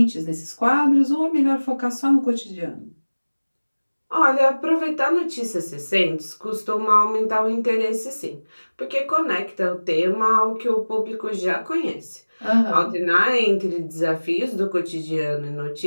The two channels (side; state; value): both; inverted; correlation -1.00